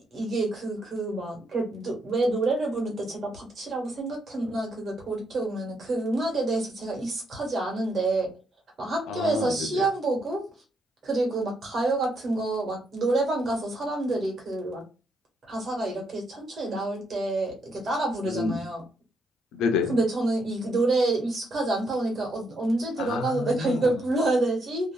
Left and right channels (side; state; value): both; normal; correlation 0.76